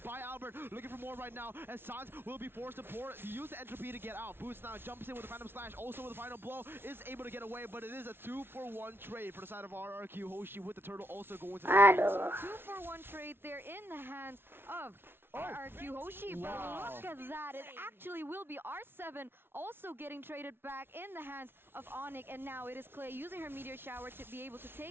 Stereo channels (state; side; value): late; left; 0.11 ms